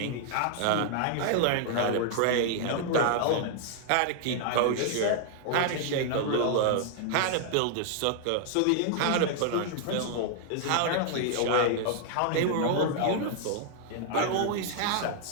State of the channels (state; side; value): different; both; correlation 0.00